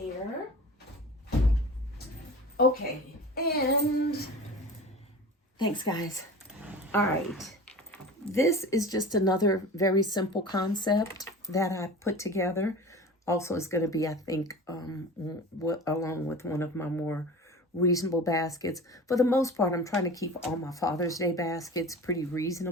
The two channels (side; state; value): both; normal; correlation 0.36